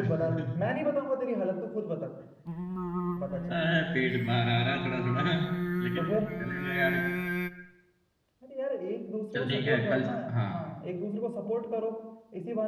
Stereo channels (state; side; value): identical; both; correlation 1.00